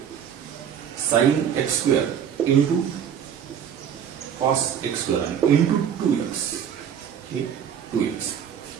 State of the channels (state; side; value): quieter; left; 8.4 dB